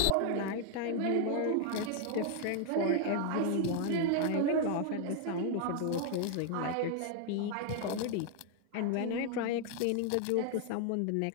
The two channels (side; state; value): both; different; correlation 0.00